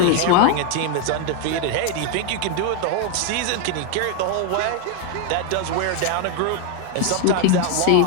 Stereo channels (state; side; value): different; both; correlation 0.01